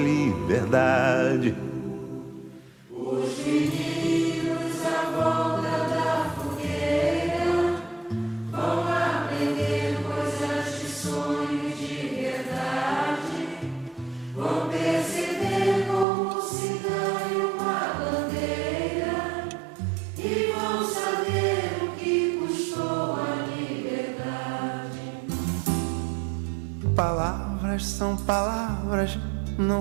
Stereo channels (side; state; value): left; drops out; at 16.1 s